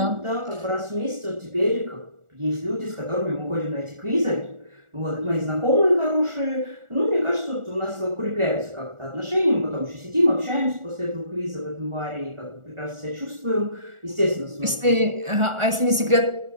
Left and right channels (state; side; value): late; left; 1.4 ms